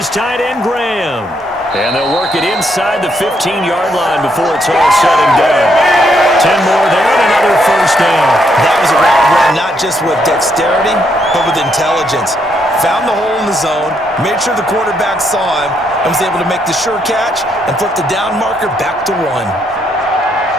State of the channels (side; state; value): both; normal; correlation 0.75